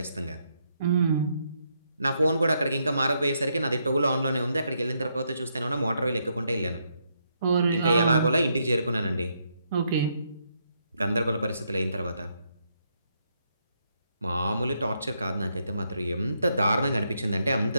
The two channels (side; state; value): both; inverted; correlation -0.77